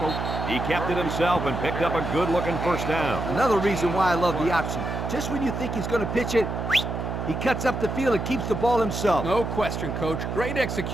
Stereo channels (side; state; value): right; noise; hum, 4 dB below the sound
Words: He kept it himself and picked up a good-looking 1st down. Another reason why I love the option. Just when you think he's going to pitch it, he cuts up the field and keeps the ball himself. No question, Coach. Great